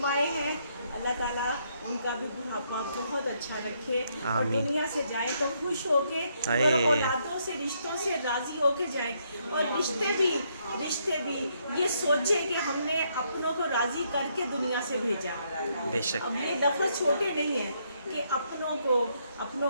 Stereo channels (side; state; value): both; inverted; correlation -0.74